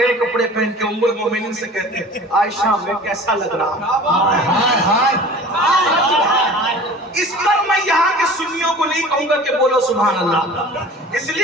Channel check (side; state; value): both; normal; correlation 0.42